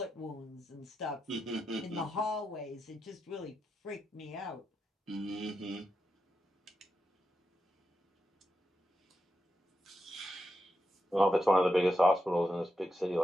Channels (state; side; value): normal; both; correlation 0.87